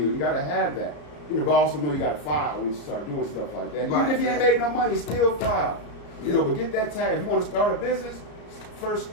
You got to have that. But also know you got to file when you start doing stuff like that. Right. Even if you ain't made no money, still file. You know, but get that tax. If you want to start a business, first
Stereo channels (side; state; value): right; late; 34 ms